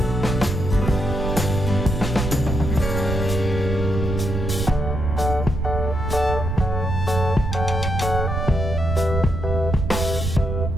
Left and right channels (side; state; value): right; noise; rumble, 2 dB below the sound